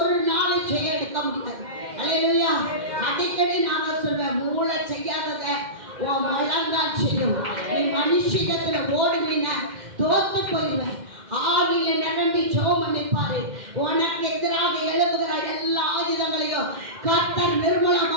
நாளை செய்ய எடுக்க முடியாது. அல்லேலூயா. அடிக்கடி நான் சொல்வேன், மூளை செய்யாதத உன் முழங்கால் செய்யும். நீ மனுஷிகத்துல ஓடுனீன்னா தோத்து போயிடுவேன். ஆவியில நிரம்பி ஜெபம் பண்ணிப்பாரு. உனக்கு எதிராக எழுப்புகிற எல்லா ஆயுதங்களையும் கர்த்தர்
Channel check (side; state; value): left; late; 2.1 ms